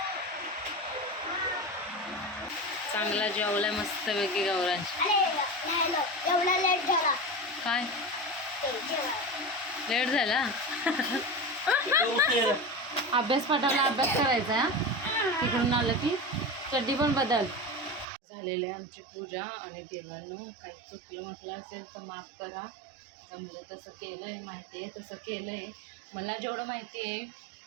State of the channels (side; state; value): left; drops out; at 18.1 s